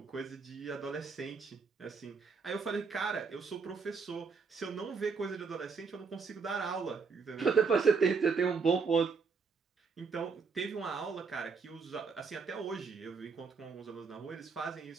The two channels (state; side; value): quieter; left; 5.2 dB